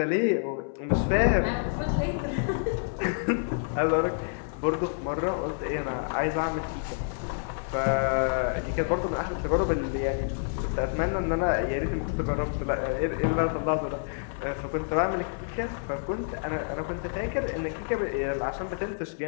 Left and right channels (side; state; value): right; silent; 59 dB below the other